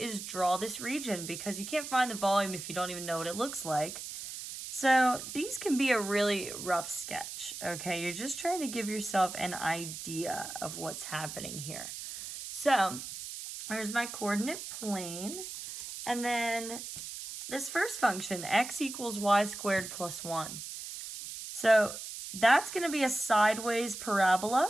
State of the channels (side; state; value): right; noise; hiss, 9 dB below the sound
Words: draw this region, because you can't find the volume if you don't even know what it looks like. So these can be a really rough sketch, okay? You're just trying to give yourself an idea of what's happening here. So here's my coordinate plane, and then this first function, x equals y squared plus 1. So that's going to be a sideways